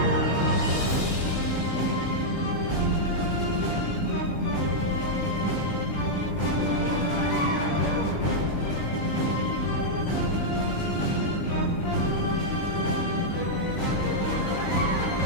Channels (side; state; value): right; late; 18 ms